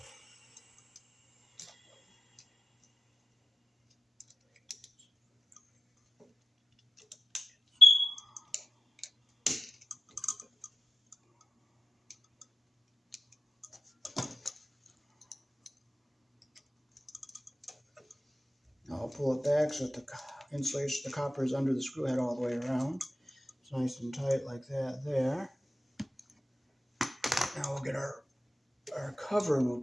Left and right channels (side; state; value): both; normal; correlation 0.97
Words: Now I'll pull it back so that the insulation, the copper is under the screw head all the way around. It's nice and tight like that there. Now we'll get our cover and we'll